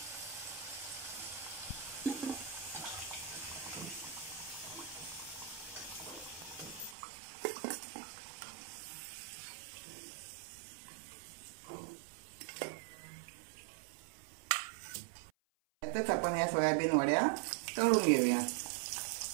त्यातच आपण या सोयाबीन वड्या तळून घेऊया.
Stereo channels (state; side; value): drops out; left; at 7.0 s